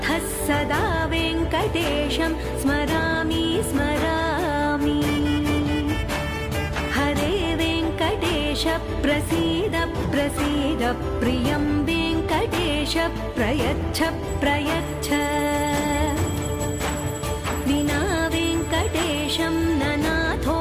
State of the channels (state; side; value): identical; both; correlation 1.00